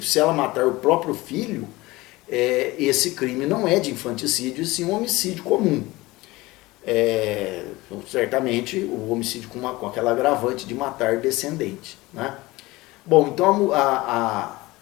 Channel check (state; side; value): quieter; right; 20.3 dB